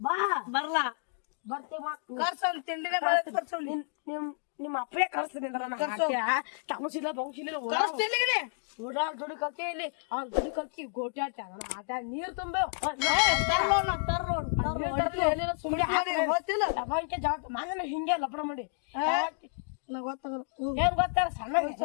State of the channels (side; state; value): right; silent; digital silence